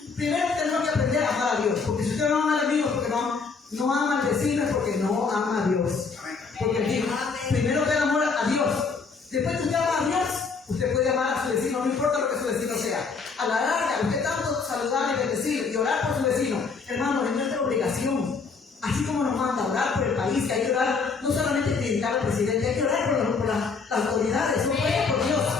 Primero tenemos que aprender a amar a Dios. Porque si usted no ama al enemigo, porque no ama al vecino, es porque no ama a Dios. Porque él dijo: primero ten amor a Después que usted ama a Dios, usted puede amar a su vecino, no importa lo que su vecino sea. A la larga, usted tanto saludar y bendecir y orar por su vecino, hermano, es nuestra obligación. Así como nos manda a orar por el país, que hay que orar, no solamente criticar al presidente, hay que orar por las autoridades, son puestas por Dios.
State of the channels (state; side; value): quieter; right; 4.9 dB